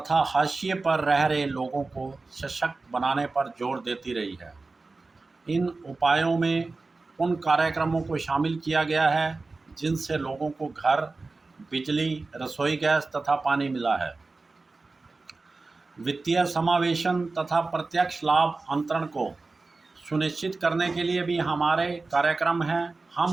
हाशिए पर रह रहे लोगों को सशक्त बनाने पर जोर देती रही है। इन उपायों में उन कार्यक्रमों को शामिल किया गया है जिनसे लोगों को घर, बिजली, रसोई गैस तथा पानी मिला है। वित्तीय समावेशन तथा प्रत्यक्ष लाभ अंतरण को सुनिश्चित करने के लिए भी हमारे कार्यक्रम हैं।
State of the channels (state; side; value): quieter; left; 3.7 dB